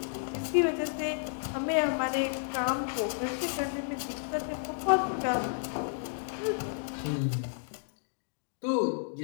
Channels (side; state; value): right; silent; digital silence